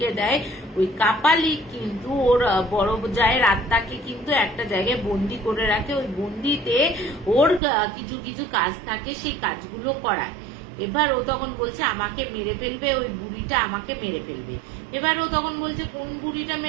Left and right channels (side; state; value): left; drops out; at 7.6 s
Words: দেয়। ওই কাপালিক কিন্তু ওর বড় জায়ের আত্মাকে কিন্তু একটা জায়গায় বন্দি করে রাখে, ওই বন্দিতে ওর কিছু কিছু কাজ থাকে, সেই কাজগুলো করায়। এবার ও তখন বলছে আমাকে মেরে ফেলবে, ওই বুড়িটা আমাকে মেরে ফেলবে। এবার ও তখন বলছে কোন বুড়িটা